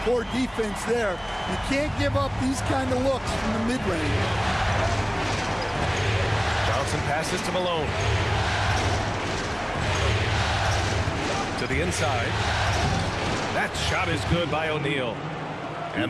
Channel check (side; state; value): both; identical; correlation 1.00